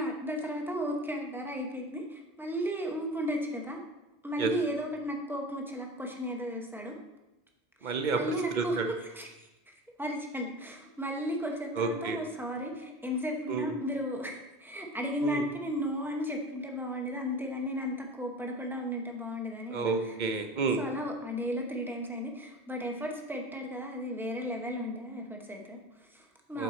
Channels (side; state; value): both; normal; correlation 0.35